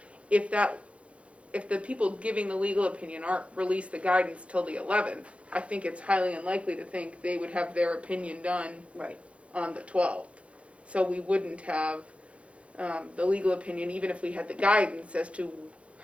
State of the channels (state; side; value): late; left; 0.062 ms